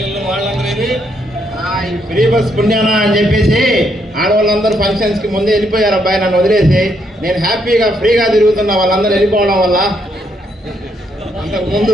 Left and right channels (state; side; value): normal; both; correlation 0.75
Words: వాళ్ళందరూ ఏరి? ఈ ఫ్రీ బస్ పుణ్యానా అని చెప్పేసి ఆడవాళ్ళందరూ ఫంక్షన్స్ కి ముందే వెళ్ళిపోయారు అబ్బాయి, నన్ను వదిలేసి. నేను హ్యాపీగా ఫ్రీగా తిరుగుతున్నా వాళ్ళందరూ వెళ్ళిపోవడం వల్ల.